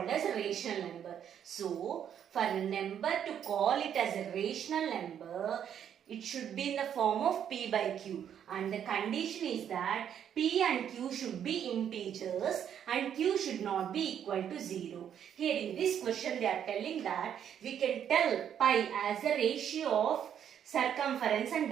as a rational number. So, for a number to call it as a rational number, it should be in the form of p by q, and the condition is that p and q should be integers and q should not be equal to 0. Here in this question they are telling that we can tell pi as a ratio of circumference and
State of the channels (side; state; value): left; quieter; 9.1 dB